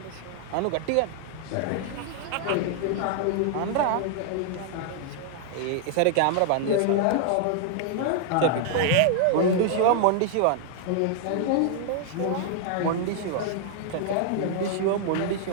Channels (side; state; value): both; different; correlation 0.00